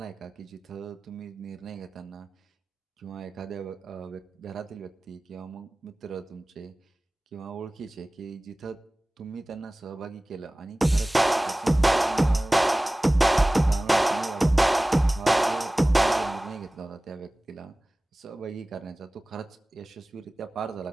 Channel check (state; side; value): normal; both; correlation 0.98